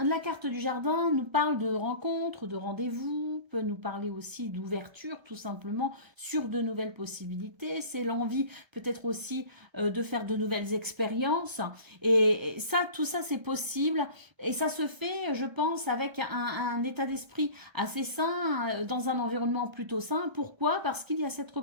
carte du jardin nous parle de rencontres, de rendez-vous, peut nous parler aussi d'ouverture, tout simplement, sur de nouvelles possibilités. C'est l'envie peut-être aussi de faire de nouvelles expériences. Et ça, tout ça, c'est possible. Et ça se fait, je pense, avec un état d'esprit assez sain, dans un environnement plutôt sain. Pourquoi? Parce qu'il y a cette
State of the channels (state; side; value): late; left; 1.3 ms